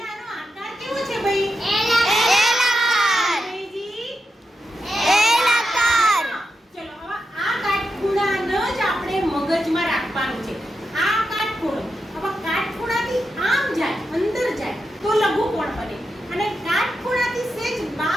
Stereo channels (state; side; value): normal; both; correlation 0.87